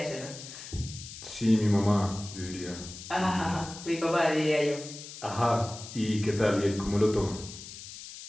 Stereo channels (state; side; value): noise; left; hiss, 13 dB below the sound